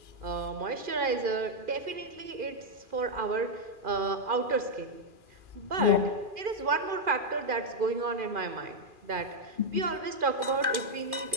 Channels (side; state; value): left; late; 2.4 ms